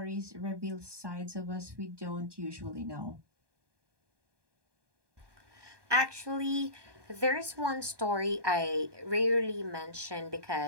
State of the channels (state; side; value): late; left; 1.2 ms